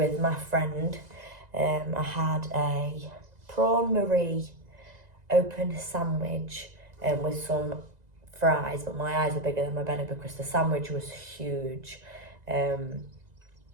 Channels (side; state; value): left; late; 2.0 ms